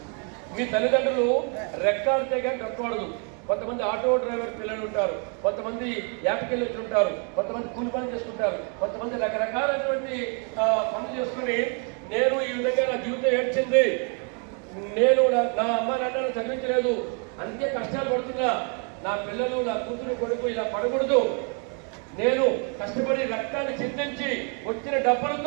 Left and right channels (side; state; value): left; quieter; 38.7 dB